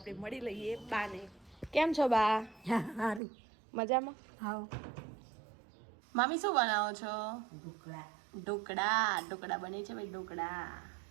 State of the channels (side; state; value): left; drops out; at 3.2 s